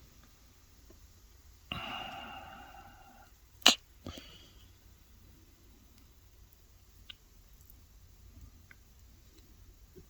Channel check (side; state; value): both; identical; correlation 1.00